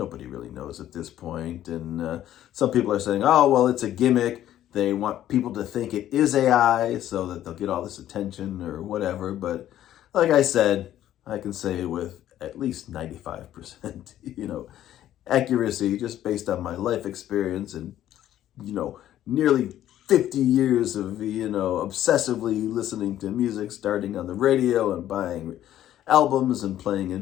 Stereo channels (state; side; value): quieter; right; 12.3 dB